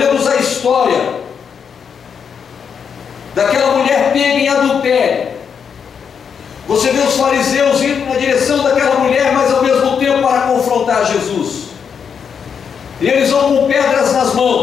a história daquela mulher pega em adultério, você vê os fariseus indo na direção daquela mulher, mas ao mesmo tempo para confrontar Jesus. E eles vão com pedras nas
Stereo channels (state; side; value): quieter; right; 6.9 dB